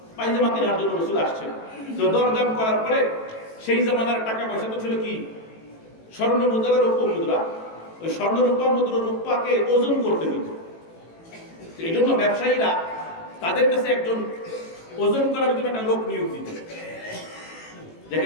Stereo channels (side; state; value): right; late; 18 ms